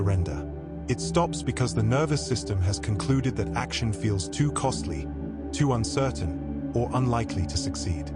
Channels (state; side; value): identical; both; correlation 1.00